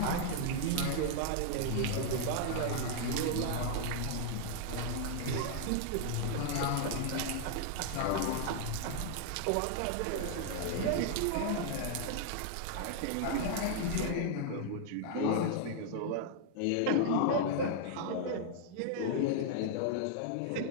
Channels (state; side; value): different; both; correlation -0.01